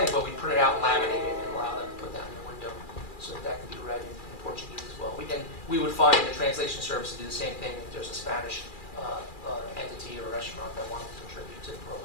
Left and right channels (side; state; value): right; late; 2.4 ms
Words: but we print it out, laminate it, and allow them to put that in the window so that can be read in Portuguese as well. We would find the translation service to do the same thing if there's a Spanish entity or restaurant that wanted to contribute to the